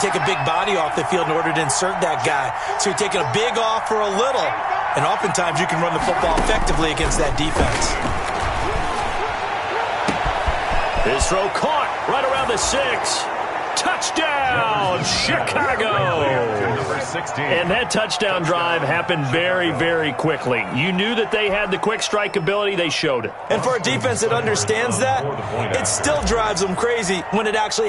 a big body off the field in order to insert that guy. So you're taking a big off for a little. And oftentimes you can run the football effectively against that defense. His throw caught right around the 6. Touchdown, Chicago. And that touchdown drive happened very, very quickly. You knew that they had the quick strike ability. They showed it. And for a defense that understands that, it still drives them crazy when it actually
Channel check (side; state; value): both; identical; correlation 1.00